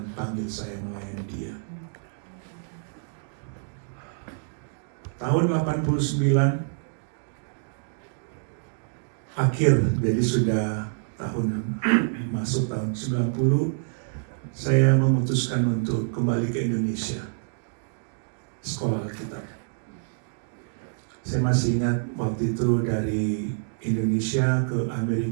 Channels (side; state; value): left; silent; digital silence